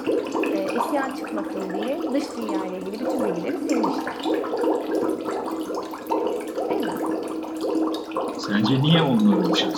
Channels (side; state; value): both; identical; correlation 1.00